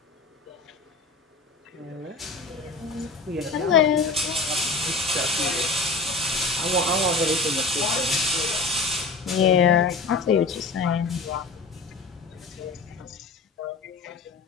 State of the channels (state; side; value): quieter; right; 3.7 dB